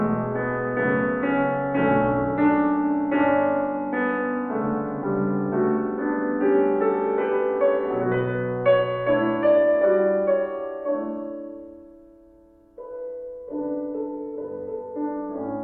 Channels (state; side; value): identical; both; correlation 1.00